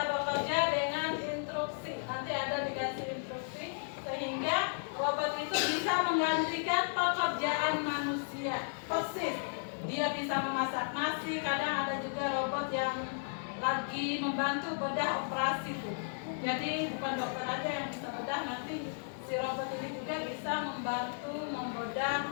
bekerja dengan instruksi. Nanti ada dikasih instruksi sehingga robot itu bisa menggantikan pekerjaan manusia. Persis. Dia bisa memasak nasi. Kadang ada juga robot yang lagi membantu bedah operasi tuh. Jadi bukan dokter aja yang bisa bedah, nanti si robot ini juga bisa membantu membedah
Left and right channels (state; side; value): silent; right; digital silence